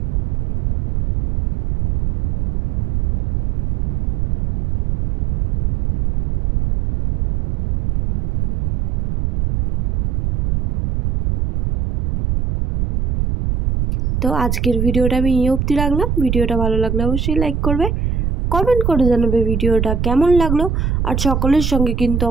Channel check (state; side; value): noise; right; rumble, 1 dB below the sound